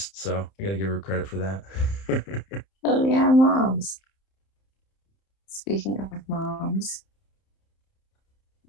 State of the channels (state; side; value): late; right; 31 ms